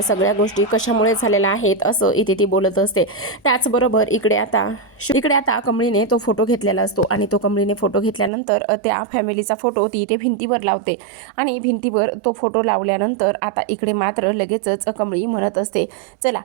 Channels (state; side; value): drops out; left; at 8.3 s